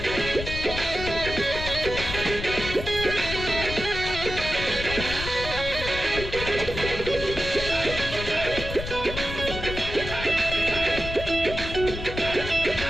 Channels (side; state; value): left; noise; rumble, 7 dB below the sound